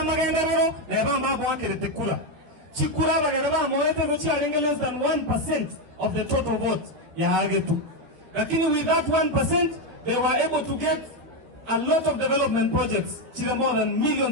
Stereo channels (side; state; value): left; late; 13 ms